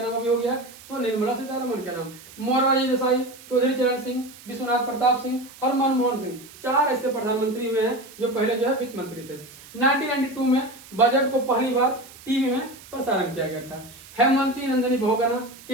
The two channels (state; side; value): noise; right; hiss, 20 dB below the sound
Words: नाम भी हो गया? तो निर्मला सीतारमण के नाम। मोरारजी देसाई, चौधरी चरण सिंह, विश्वनाथ प्रताप सिंह और मनमोहन सिंह 4 ऐसे प्रधानमंत्री हुए हैं जो पहले जो है वित्त मंत्री थे। 1992 में बजट को पहली बार टीवी में प्रसारण किया गया था। हेमवती नंदनी बहुगुणा,